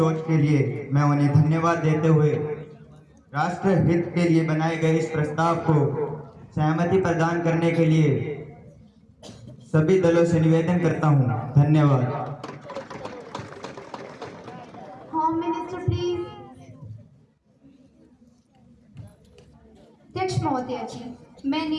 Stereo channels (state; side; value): identical; both; correlation 1.00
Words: के लिए मैं उन्हें धन्यवाद देते हुए राष्ट्र हित के लिए बनाए गए इस प्रस्ताव को सहमति प्रदान करने के लिए सभी दलों से निवेदन करता हूं। धन्यवाद। Home minister please. अध्यक्ष महोदय जी,